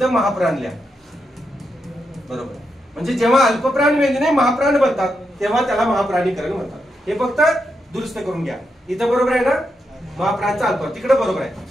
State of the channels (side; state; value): both; normal; correlation 0.84